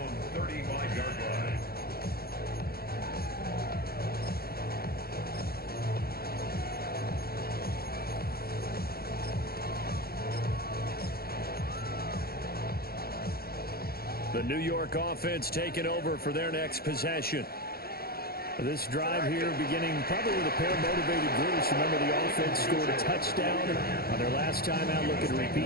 35-yard line. The New York offense taking over for their next possession. This drive here beginning probably with a pair of motivated groups. Remember, the offense scored a touchdown on their last time out. Looking to repeat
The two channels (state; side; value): late; right; 0.44 ms